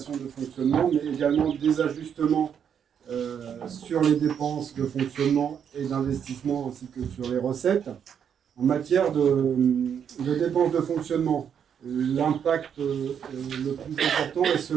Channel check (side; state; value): left; quieter; 8.1 dB